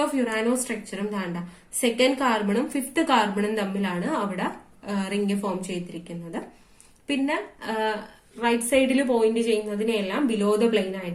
ഫ്യൂറാനോ സ്ട്രക്ചറും താണ്ട 2nd കാർബണും 5th കാർബണും തമ്മിലാണ് അവിടെ റിംഗ് ഫോം ചെയ്തിരിക്കുന്നത്. പിന്നെ റൈറ്റ് സൈഡിൽ പോയിന്റ് ചെയ്യുന്നതിനെല്ലാം ബിലോ ദ പ്ലെയിൻ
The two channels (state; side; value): identical; both; correlation 1.00